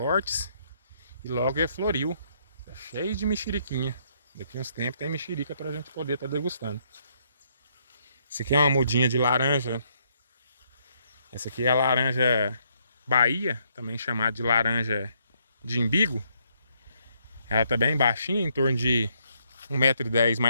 e logo ele floriu. Tá cheio de mexeriquinha. Daqui uns tempos tem mexerica pra gente poder estar degustando. Esse aqui é uma mudinha de laranja. Essa aqui é a laranja Bahia, também chamada de laranja de imbigo. Ela tá bem baixinha, em torno de 1,10 m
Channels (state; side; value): inverted; both; correlation -0.72